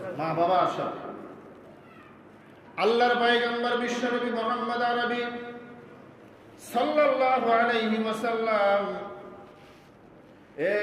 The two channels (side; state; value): both; identical; correlation 1.00